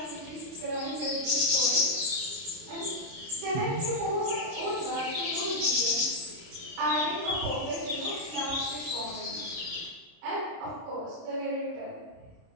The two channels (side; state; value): left; late; 30 ms